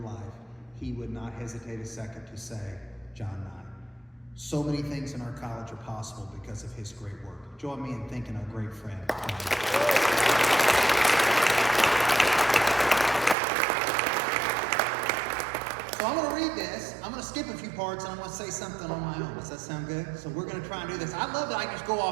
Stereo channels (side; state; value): left; drops out; at 13.4 s